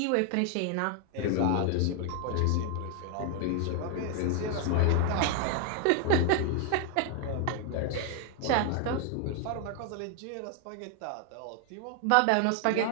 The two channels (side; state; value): both; different; correlation 0.00